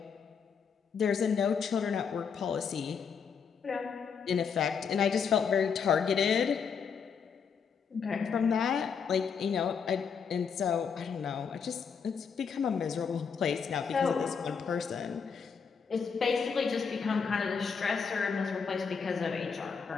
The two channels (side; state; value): right; quieter; 6.3 dB